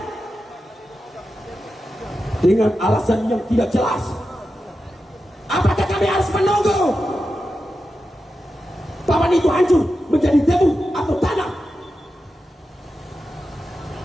dengan alasan yang tidak jelas. Apakah kami harus menunggu papan itu hancur menjadi debu atau tanah?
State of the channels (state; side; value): normal; both; correlation 0.90